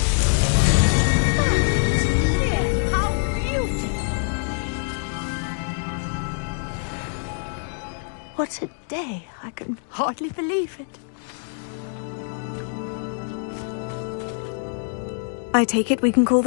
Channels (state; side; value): silent; right; digital silence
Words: What a day. I can hardly believe it. I take it we can call